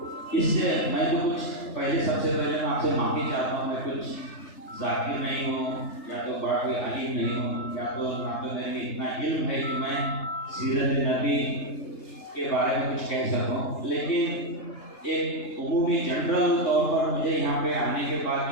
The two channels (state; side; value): late; right; 3.3 ms